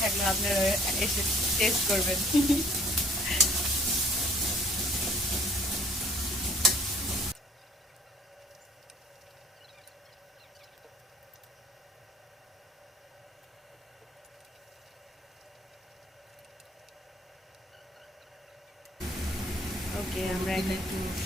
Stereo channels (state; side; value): normal; both; correlation 0.55